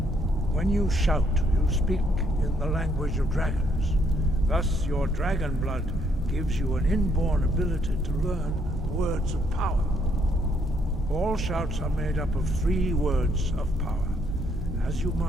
When you shout, you speak in the language of dragons. Thus, your dragon blood gives you an inborn ability to learn words of power. All shouts are made up of 3 words of power. As you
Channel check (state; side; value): normal; both; correlation 0.71